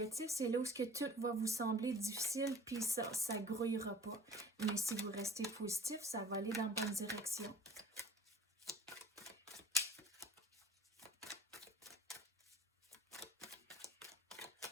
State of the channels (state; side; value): normal; both; correlation 0.49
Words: c'est là où tout va vous sembler difficile, puis ça ne grouillera pas. Mais si vous restez positif, ça va aller dans la bonne direction.